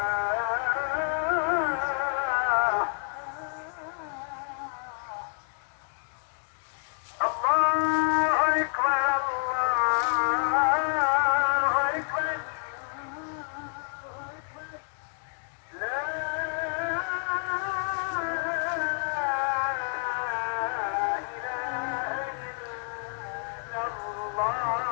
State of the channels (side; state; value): right; silent; 59 dB below the other